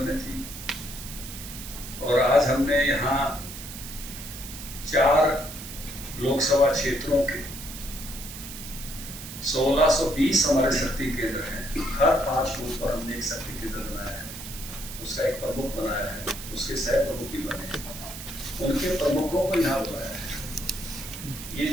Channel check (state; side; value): noise; right; hiss, 11 dB below the sound